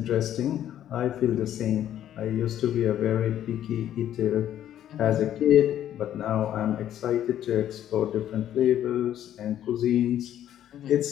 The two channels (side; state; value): right; quieter; 11.2 dB